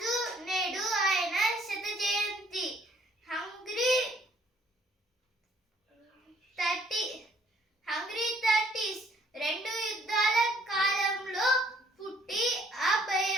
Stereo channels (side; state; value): both; normal; correlation 0.62